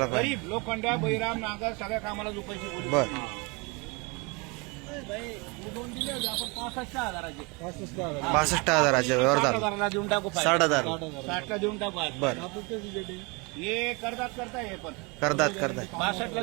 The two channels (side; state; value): left; quieter; 28.8 dB